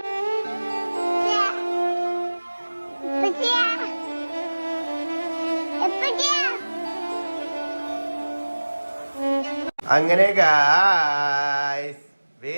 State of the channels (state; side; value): inverted; both; correlation -1.00